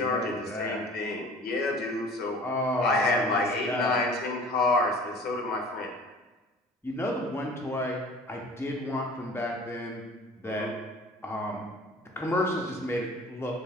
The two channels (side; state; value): both; normal; correlation 0.45